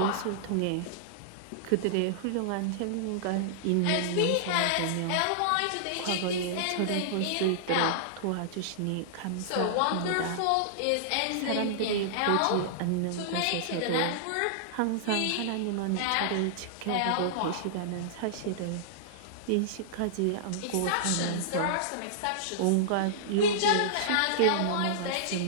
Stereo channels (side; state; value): both; different; correlation -0.02